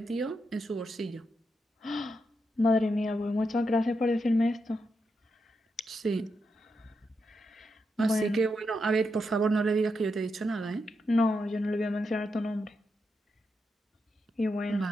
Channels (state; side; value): normal; both; correlation 0.84